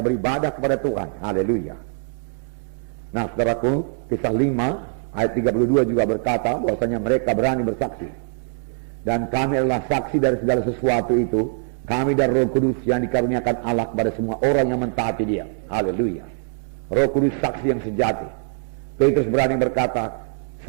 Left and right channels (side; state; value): left; silent; digital silence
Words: beribadah kepada Tuhan. Haleluya. Nah, saudaraku, kisah 5 ayat 32 juga berkata bahwasanya mereka berani bersaksi. Dan kami adalah saksi dari segala sesuatu itu. Kami dan Roh Kudus yang dikaruniakan Allah kepada semua orang yang mentaati Dia. Haleluya. Roh Kudus saksi yang sejati. Petrus berani berkata,